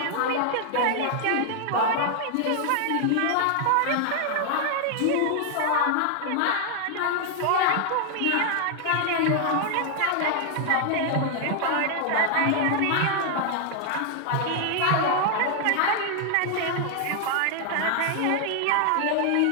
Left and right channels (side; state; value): both; different; correlation 0.00